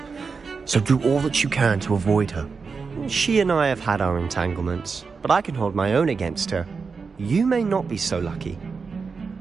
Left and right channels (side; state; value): left; quieter; 5.0 dB